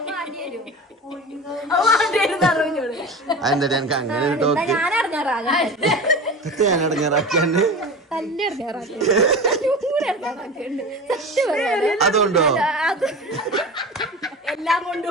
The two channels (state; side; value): normal; both; correlation 0.32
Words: അതെന്താ എനിക്ക് അങ്ങനെ ഒരു ടോക്ക് ഞാൻ ഇറങ്ങാറാകാൻ ഞാൻ ഇടങ്ങാറാക്കിയാണ്ട് അതുകൊണ്ടോ? എല്ലാം